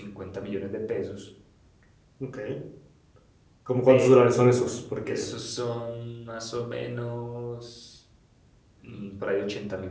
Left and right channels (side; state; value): both; identical; correlation 1.00